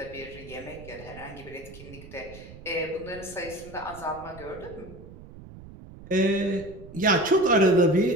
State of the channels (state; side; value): noise; right; rumble, 17 dB below the sound